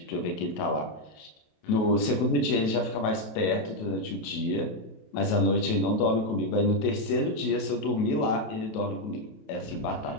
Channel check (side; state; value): right; late; 28 ms